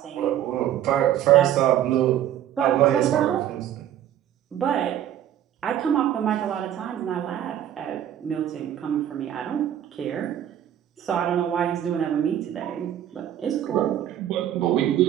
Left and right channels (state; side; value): quieter; left; 11.1 dB